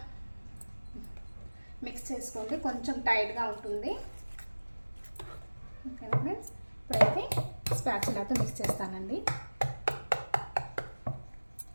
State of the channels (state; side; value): inverted; both; correlation -1.00